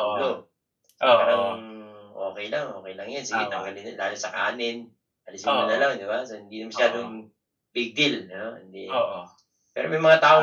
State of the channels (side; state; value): both; identical; correlation 1.00